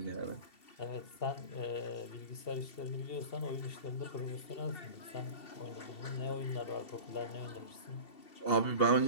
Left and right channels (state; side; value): late; right; 2.7 ms